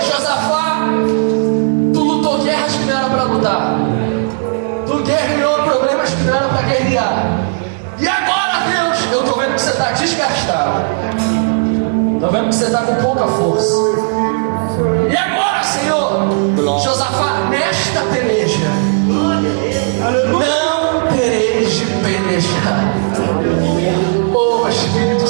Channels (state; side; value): silent; left; digital silence